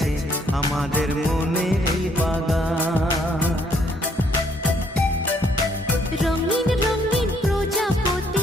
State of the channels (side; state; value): both; normal; correlation 0.67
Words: আমাদের মনের এই বাগান। রঙিন রঙিন প্রজাপতি